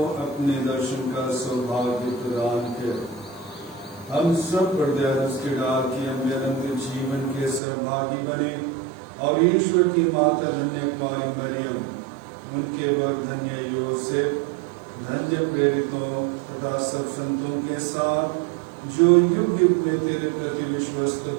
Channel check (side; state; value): left; drops out; at 7.6 s